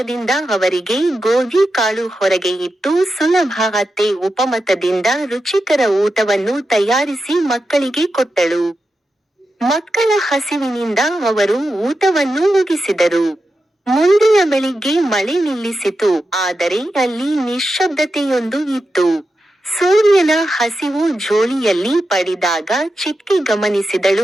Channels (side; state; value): both; normal; correlation 0.89